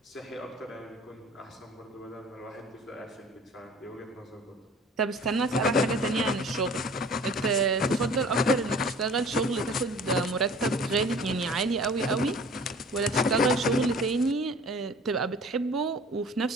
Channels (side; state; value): both; normal; correlation 0.47